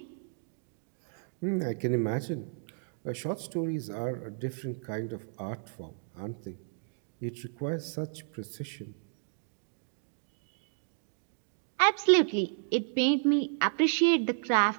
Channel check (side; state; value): left; silent; digital silence